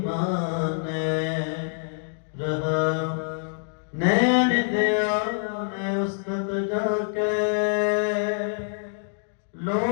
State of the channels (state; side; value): silent; right; digital silence